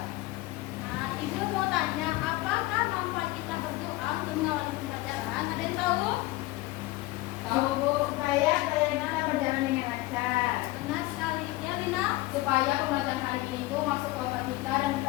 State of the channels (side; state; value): right; quieter; 19.2 dB